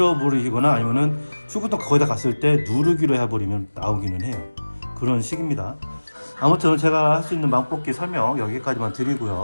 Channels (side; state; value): both; inverted; correlation -1.00